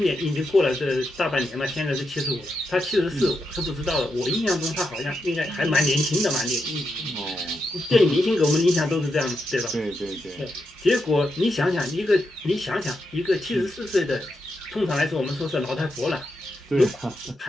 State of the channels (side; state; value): both; normal; correlation 0.85